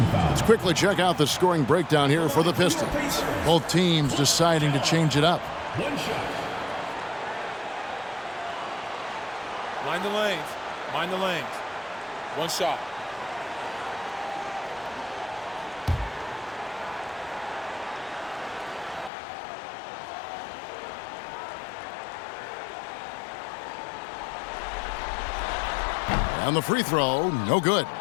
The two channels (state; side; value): drops out; right; at 19.1 s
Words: Let's quickly check out the scoring breakdown here for the Pistons. Both teams deciding to change it up. One shot. Mind the lanes. Mind the lanes. One shot. And the free throw, no good.